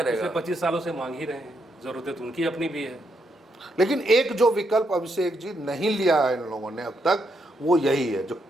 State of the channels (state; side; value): normal; both; correlation 0.79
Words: पिछले 25 सालों से मांग ही रहे हैं, जरूरत तो उनकी अपनी भी है। लेकिन एक जो विकल्प अभिषेक जी नहीं लिया है इन लोगों ने अब तक, वो यही है जो